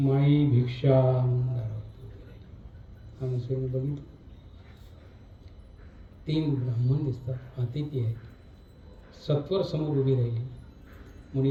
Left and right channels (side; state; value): both; identical; correlation 1.00